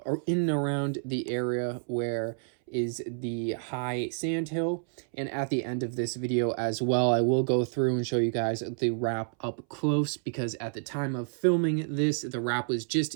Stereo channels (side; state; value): left; silent; 58 dB below the other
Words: in and around the area where is the high sand hill. And at the end of this video as well, I will go through and show you guys the wrap up close, because at the time of filming this, the wrap was just